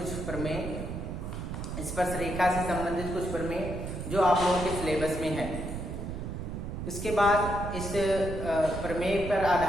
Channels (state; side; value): noise; right; rumble, 6 dB below the sound